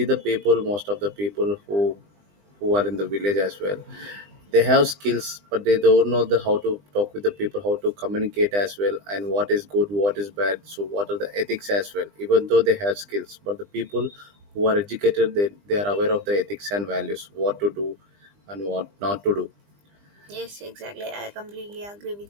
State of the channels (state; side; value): late; left; 20 ms